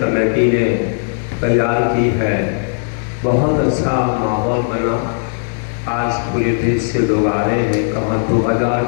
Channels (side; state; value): right; silent; 68 dB below the other